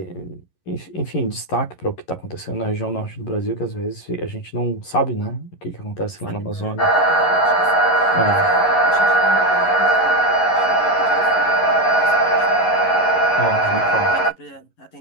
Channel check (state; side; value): late; right; 11 ms